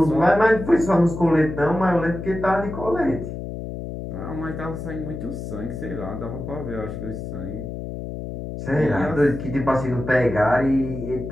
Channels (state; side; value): noise; left; hum, 7 dB below the sound